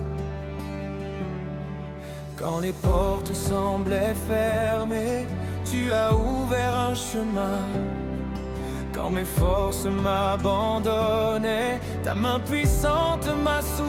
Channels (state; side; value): identical; both; correlation 1.00